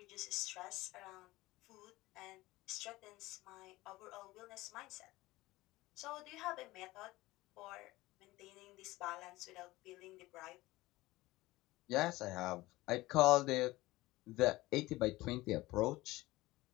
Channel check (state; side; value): quieter; right; 18.9 dB